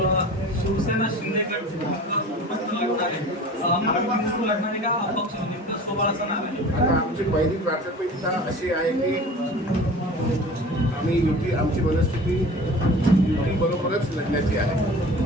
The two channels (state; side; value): normal; both; correlation 0.39